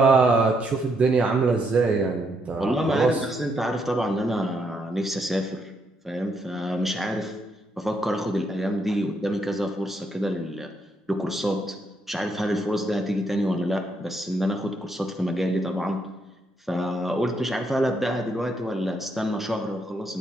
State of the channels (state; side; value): normal; both; correlation 0.76